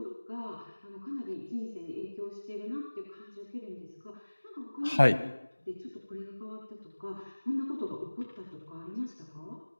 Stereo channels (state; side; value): inverted; both; correlation -1.00